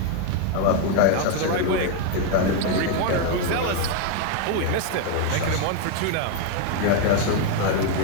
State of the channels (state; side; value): different; both; correlation 0.01